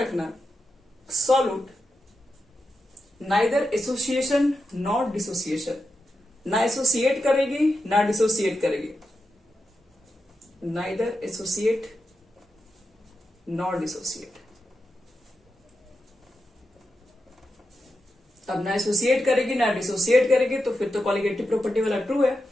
solute neither association not dissociation, ना एसोसिएट करेगी ना डिसोसिएट करेगी, नाइदर एसोसिएट नॉट डिसोसिएट। अब ना एसोसिएट करेगी ना डिसोसिएट करेगी, तो फिर तो कॉलिगेटिव प्रॉपर्टी वाला ट्रू है।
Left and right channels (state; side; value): normal; both; correlation 0.88